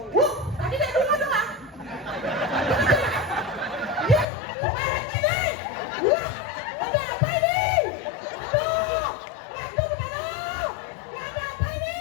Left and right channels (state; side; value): drops out; right; at 4.2 s